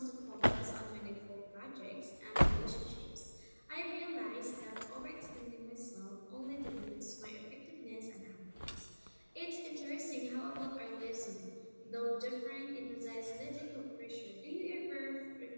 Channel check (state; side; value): inverted; both; correlation -1.00